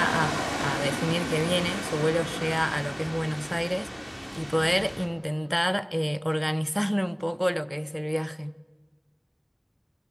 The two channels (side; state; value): both; identical; correlation 1.00